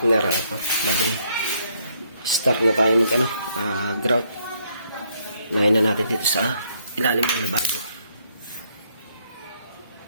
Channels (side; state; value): both; inverted; correlation -0.71